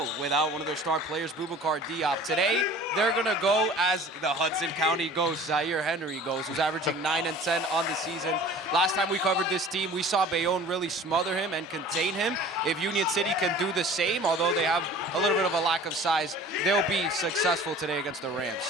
without one of their star players, Boubacar Diop. Today, they're going to go as the Hudson County ghost, Zaire Henry goes, who's averaging 9 and 10 on the season. Last time we covered this team, we saw Bayonne really smother him and contain him. If Union City can do the same, although they have a little bit of a lack of size, they'll be successful today against the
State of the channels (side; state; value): both; normal; correlation 0.45